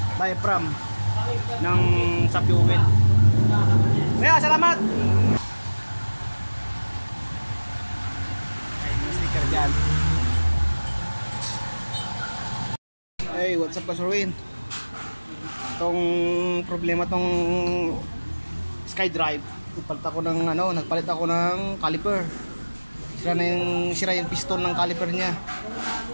diaphragm ng sa fuel. salamat! Ay, may sticker dyan. Hey, what's up, Kasurwin? Itong problema tong SkyDrive. Nagpalit ako ng caliper. Sira yung piston ng caliper niya.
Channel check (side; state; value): both; inverted; correlation -1.00